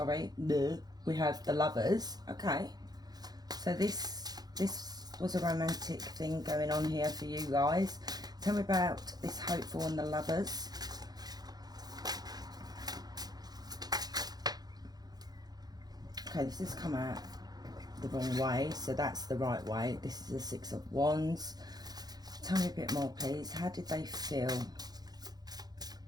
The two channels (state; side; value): late; left; 0.19 ms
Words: We have the Lovers. Okay. So this was a romantic thing going on here for you guys. Tell me about this hopeful and the Lovers. Okay, this has come out the wrong way, so that's the right way. This is the 6 of Wands. Tell me a bit more, please. How did they feel?